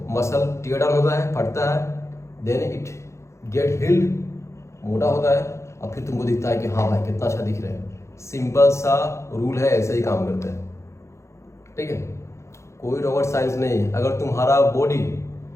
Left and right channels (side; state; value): right; late; 0.14 ms